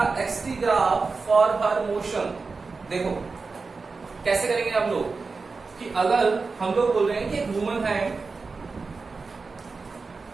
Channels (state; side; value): quieter; left; 4.3 dB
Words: xt graph for her motion. देखो कैसे करेंगे हम लोग कि अगर हम लोग बोल रहे हैं कि एक वुमन है,